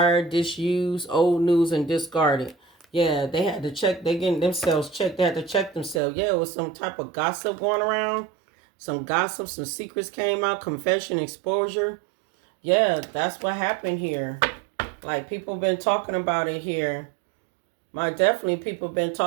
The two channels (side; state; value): left; drops out; at 6.0 s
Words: disused, old news, and discarded. Yeah, they had to check. They getting themselves checked. They had to check themselves. Yeah, it was some type of gossip going around. Some gossip, some secrets came out. Confession, exposure. Yeah, that's what happened here. Like, people been talking about it here. Definitely people been